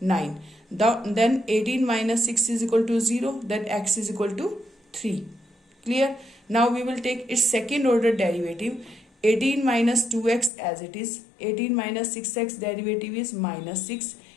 9. Then 18 minus 6 is equal to 0. Then x is equal to 3. Clear? Now we will take its second order derivative. 18 minus 2x as it is. 18 minus 6x derivative is minus 6.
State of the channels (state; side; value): drops out; right; at 10.5 s